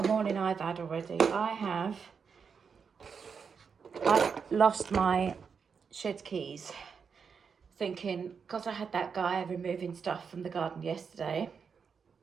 a morning I've had already. I lost my shed keys, thinking, because I had that guy removing stuff from the garden yesterday,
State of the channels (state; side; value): quieter; left; 6.1 dB